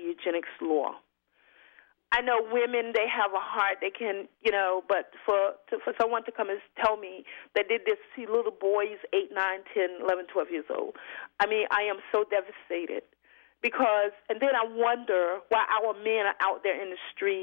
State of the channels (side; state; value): right; silent; 57 dB below the other